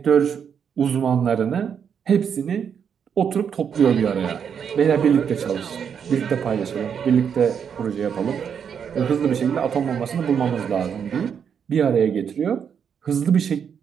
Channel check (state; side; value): quieter; left; 7.5 dB